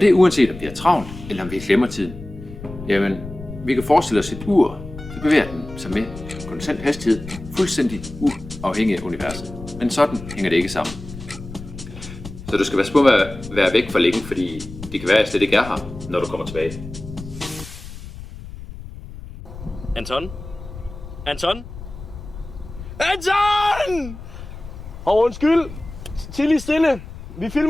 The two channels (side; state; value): left; noise; rumble, 13 dB below the sound